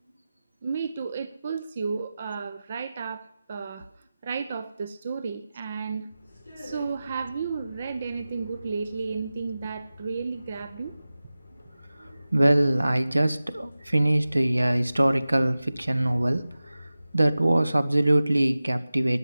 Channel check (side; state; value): both; inverted; correlation -0.96